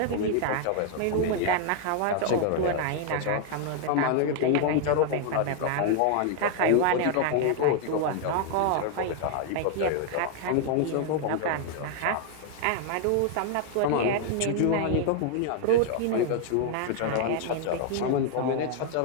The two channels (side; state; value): both; different; correlation 0.00